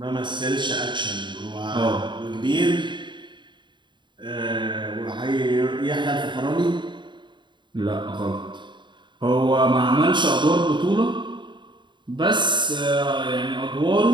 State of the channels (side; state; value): left; late; 0.23 ms